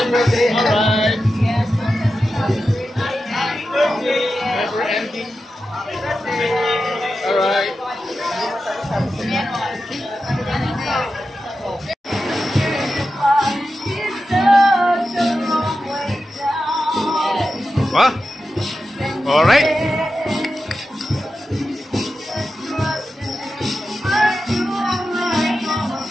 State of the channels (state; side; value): normal; both; correlation 0.91